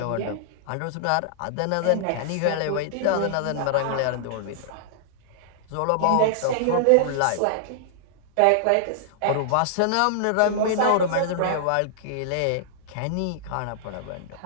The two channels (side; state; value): both; different; correlation -0.01